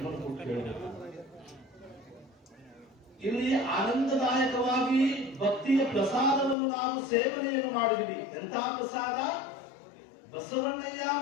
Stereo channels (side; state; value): right; drops out; at 6.6 s